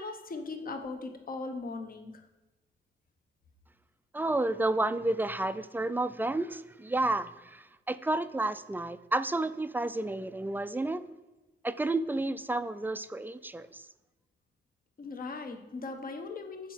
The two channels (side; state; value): both; normal; correlation 0.79